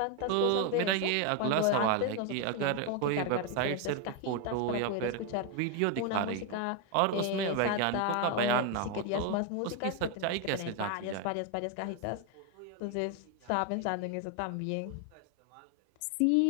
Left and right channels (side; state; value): both; different; correlation 0.01